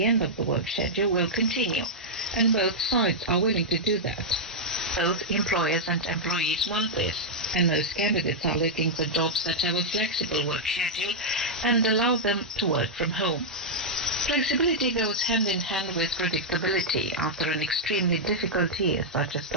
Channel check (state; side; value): normal; both; correlation -0.06